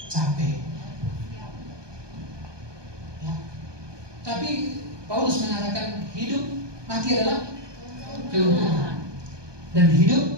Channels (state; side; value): late; left; 1.2 ms